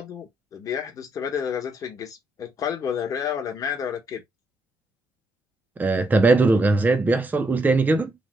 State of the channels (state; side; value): normal; both; correlation 0.79